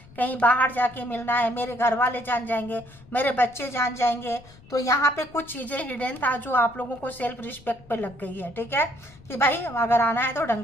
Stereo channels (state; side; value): noise; left; rumble, 23 dB below the sound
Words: कहीं बाहर जाके मिलना है, मेरे घर वाले जान जाएंगे, मेरे बच्चे जान जाएंगे। तो यहाँ पे कुछ चीज़ें हिडन था जो आप लोगों को सेल्फ रिस्पेक्ट पे लग गई है, ठीक है, कि भाई अगर आना है तो ढंग